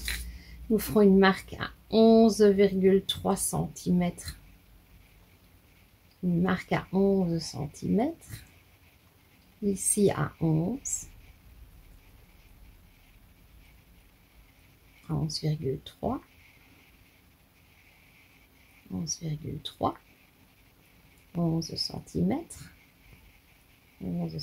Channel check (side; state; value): both; identical; correlation 1.00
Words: Nous ferons une marque à 11,3 cm. Une marque à 11 cm. Ici à 11. 11,3. 11,3. 11 cm. 11